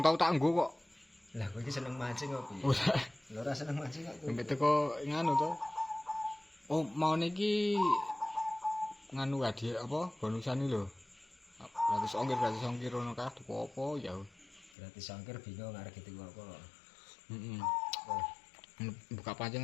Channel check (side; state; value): right; drops out; at 14.7 s